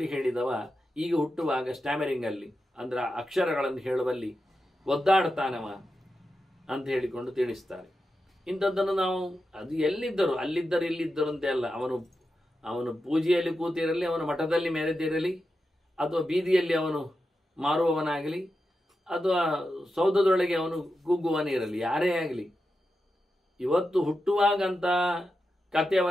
ಹೇಳಿದವ ಈಗ ಹುಟ್ಟುವಾಗ ಸ್ಟ್ಯಾಮರಿಂಗಲ್ಲಿ, ಅಂದರೆ ಅಕ್ಷರಗಳನ್ನು ಹೇಳುವಲ್ಲಿ ಒದ್ದಾಡ್ತಾನವ ಅಂತ ಹೇಳಿಕೊಂಡು ತಿಳಿಸ್ತಾರೆ. ಇಂಥದ್ದನ್ನು ನಾವು ಅದು ಎಲ್ಲಿದ್ದರು, ಅಲ್ಲಿದ್ದರು ಇಲ್ಲಿದ್ದರು ಅಂತೆ ಅಲ್ಲ. ಅವನು ಪೂಜೆಯಲ್ಲಿ ಕೂತಿರಲಿ, ಅವನು ಮಠದಲ್ಲಿ ಮೆರೆದಿರಲಿ, ಅಥವಾ ಬೀದಿಯಲ್ಲಿ ಅವನು ಮಾರುವವನಾಗಲಿ, ಅಥವಾ ಸೌಧದೊಳಗೆ ಅವನು ಕೂಗುವನಿರಲಿ, ಯಾರೇ ಆಗಲಿ, ಇವತ್ತು ಹುಟ್ಟುವಾಗಂತ ಕತೆ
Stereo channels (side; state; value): both; normal; correlation 0.89